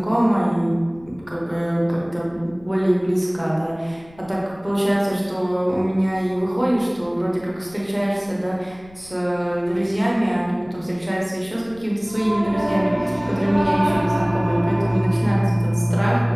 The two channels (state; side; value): noise; left; rumble, 24 dB below the sound